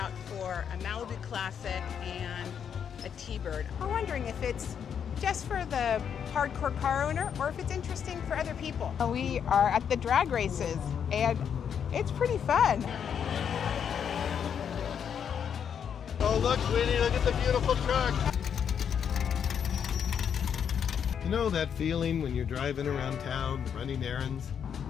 for a Malibu Classic and a T-Bird. We're wondering if it's just for the hardcore car owner or if it's interesting for other people. We are at the drag races and it's pretty fun. Oh look, Whitney, look at the beautiful truck. You know that feeling when you're driving around town, running errands,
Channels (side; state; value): right; quieter; 7.9 dB